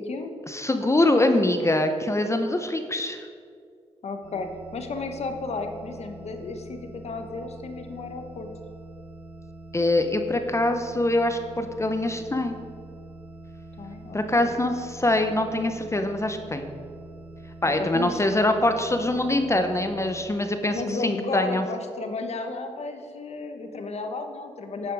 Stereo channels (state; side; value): normal; both; correlation 0.71